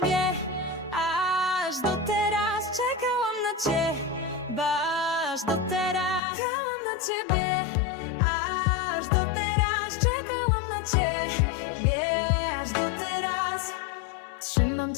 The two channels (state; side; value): drops out; right; at 6.2 s